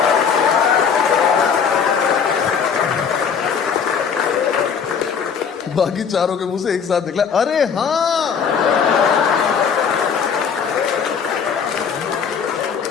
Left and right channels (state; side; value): quieter; right; 6.7 dB